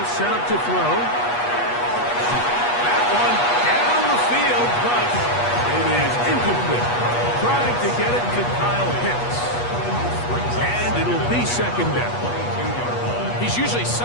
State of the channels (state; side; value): late; right; 8.3 ms